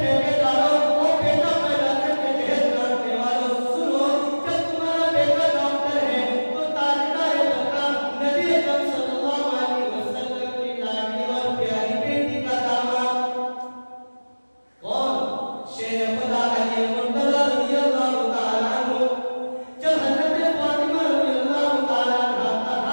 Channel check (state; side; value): inverted; both; correlation -1.00